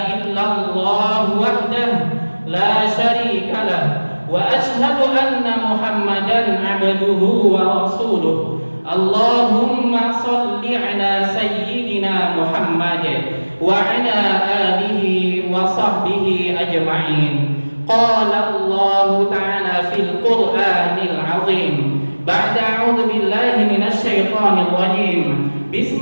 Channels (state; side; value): inverted; both; correlation -1.00